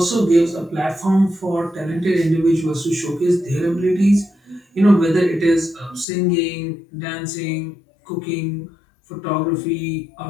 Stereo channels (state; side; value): drops out; right; at 6.1 s